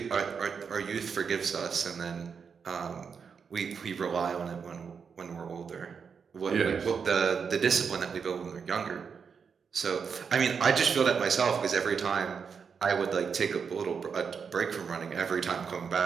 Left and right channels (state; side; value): quieter; left; 6.2 dB